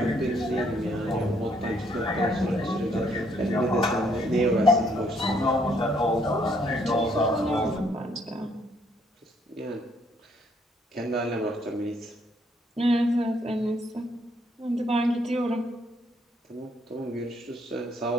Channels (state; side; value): normal; both; correlation 0.69